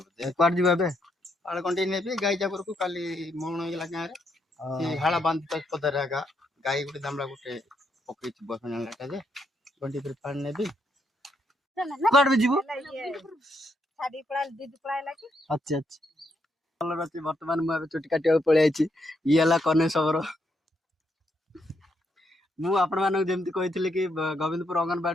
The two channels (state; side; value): normal; both; correlation 0.77